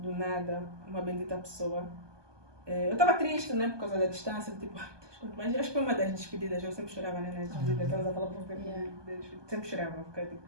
nada, uma bendita pessoa. Eu estava triste, né? Por causa da distância. Tipo, mas acho que foi uma das despedidas. Eu sempre chorava, né? Nas despedidas. Estavas a falar por sempre chorava. Porque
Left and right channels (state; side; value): late; left; 1.2 ms